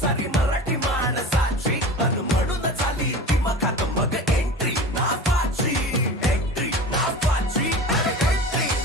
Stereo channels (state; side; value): normal; both; correlation 0.35